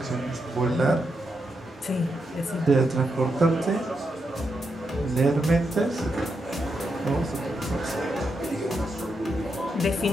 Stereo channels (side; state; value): both; normal; correlation 0.83